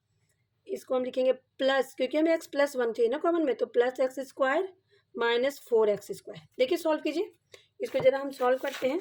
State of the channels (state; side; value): identical; both; correlation 1.00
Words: इसको हम लिखेंगे प्लस, क्योंकि हमें एक्स प्लस वन चाहिए ना कॉमन में, तो plus x square minus 4x square. देखिए सॉल्व कीजिए इसको, जरा हम सॉल्व करते